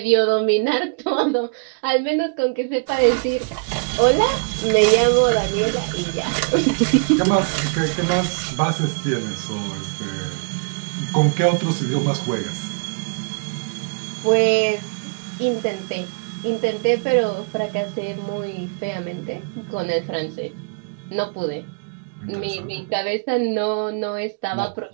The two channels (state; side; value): quieter; left; 36.7 dB